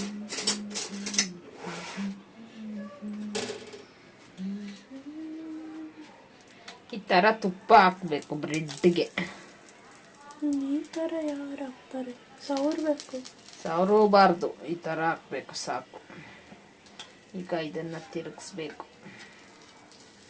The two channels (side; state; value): both; identical; correlation 1.00